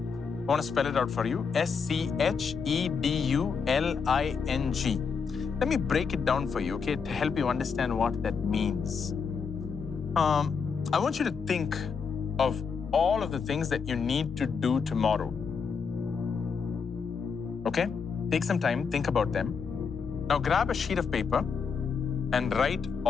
want to spell it out for you. scheduling. Let me break it down for you, okay, to help you understand what that means. I want you to think of all of the things that you need to do tomorrow. Okay? Take some time, think about them. Now grab a sheet of paper and write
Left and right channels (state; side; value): quieter; right; 5.8 dB